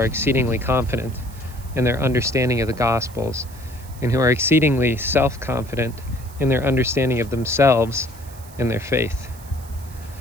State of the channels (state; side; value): noise; right; hiss, 21 dB below the sound